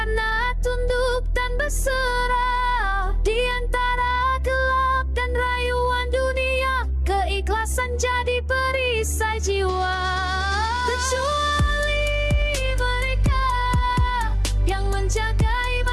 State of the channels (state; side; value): identical; both; correlation 1.00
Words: tunduk dan berserah. Di antara gelap dan rayuan dunia, keikhlasan jadi perisai jiwa. Kecuali mereka yang menjaga